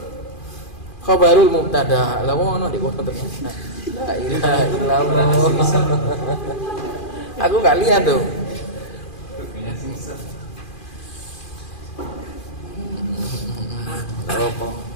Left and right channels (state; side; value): late; right; 2.4 ms